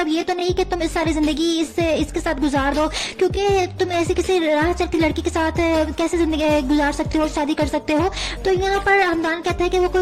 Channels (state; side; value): identical; both; correlation 1.00